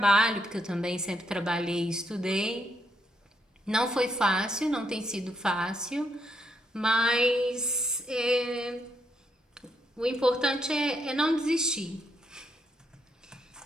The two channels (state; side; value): normal; both; correlation 0.76